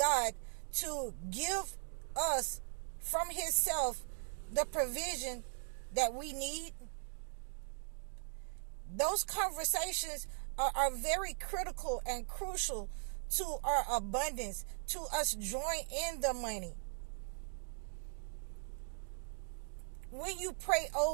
to give us from his self the provision that we need. Those conversations are very critical and crucial to our abundance, to us drawing in the money. When you pray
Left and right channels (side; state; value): left; silent; digital silence